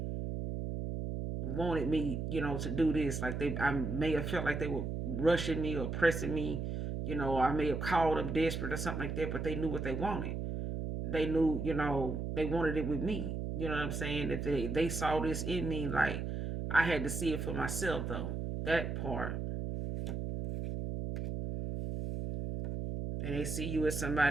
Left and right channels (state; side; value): noise; right; hum, 3 dB below the sound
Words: wanted me, to do this. Like I may have felt like they were rushing me or pressing me, or I may have called them desperate or something like that, but they knew what they wanted. They knew, they wanted it with me. You know what I'm saying? That they saw this in me, like I had to see it for myself though. That part. And they see you as